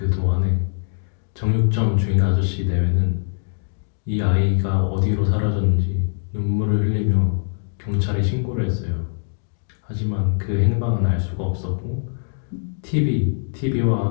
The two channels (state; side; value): silent; right; digital silence